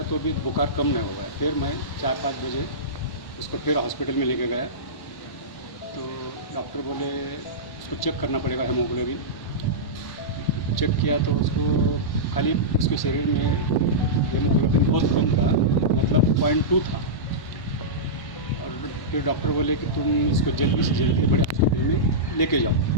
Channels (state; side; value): late; right; 1.1 ms